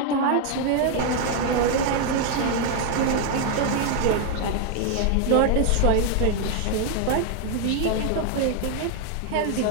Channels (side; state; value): both; different; correlation 0.00